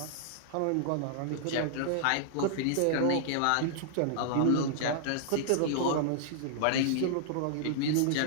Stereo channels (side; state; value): both; different; correlation -0.01